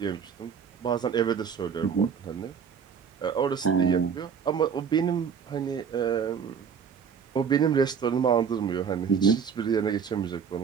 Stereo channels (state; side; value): quieter; left; 6.8 dB